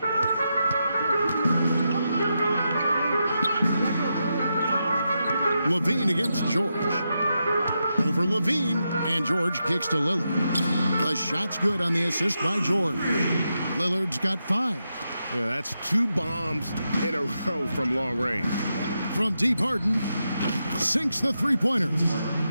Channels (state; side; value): inverted; both; correlation -0.86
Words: Levine against George. Over Levine, and George kicks to Lillard. The shot's good on the assist by George. Lillard's got 5. Yeah, that's 2 bombs in a row from long range. From deep, Harden sinks the three-pointer.